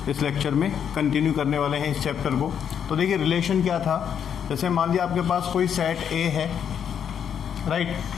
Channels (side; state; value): right; quieter; 8.2 dB